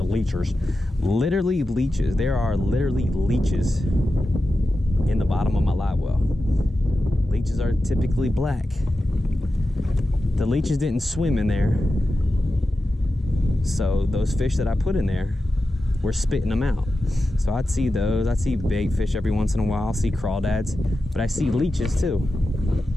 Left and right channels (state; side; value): normal; both; correlation 0.92